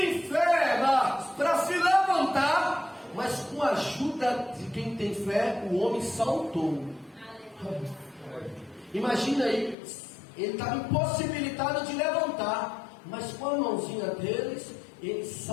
fé para se levantar, mas com a ajuda de quem tem fé, o homem saltou. Imagina aí. Ele estava impossibilitado de levantar, mas com a mãozinha deles, ele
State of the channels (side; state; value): right; drops out; at 9.8 s